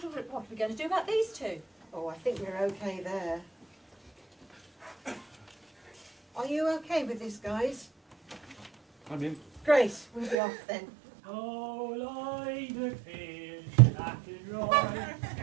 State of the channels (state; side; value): drops out; left; at 10.4 s